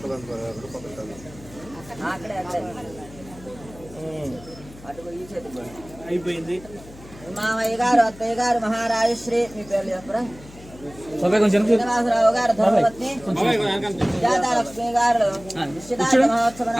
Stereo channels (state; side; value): noise; left; hum, 19 dB below the sound